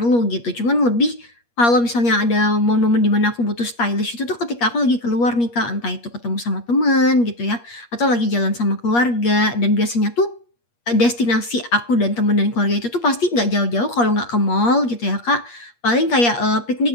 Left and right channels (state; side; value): late; right; 8.5 ms